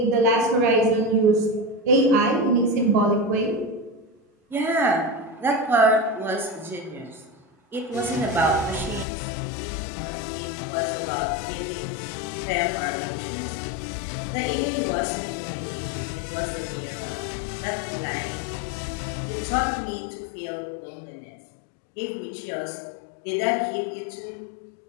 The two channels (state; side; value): drops out; right; at 9.1 s